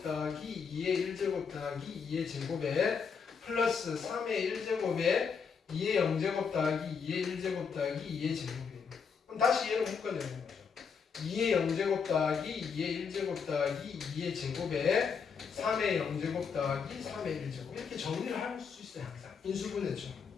더하기 2의 1제곱 더하기 2의 제곱에 플러스 3의 1제곱에 2의 0제곱 더하기 2의 1제곱 더하기 2의 제곱이에요. 그럼 다시 얘를 묶어내는 거죠. 2의 0제곱 더하기 2의 1제곱 더하기 2의 제곱에 3의 0제곱 더하기 3의 1제곱 이렇게 정리를 할 수 있어요. 항상 인수분해죠.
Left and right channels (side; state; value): right; quieter; 6.1 dB